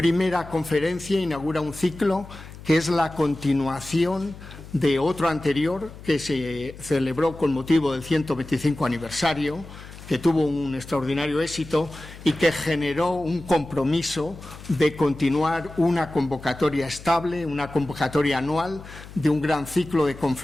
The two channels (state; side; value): noise; left; hum, 16 dB below the sound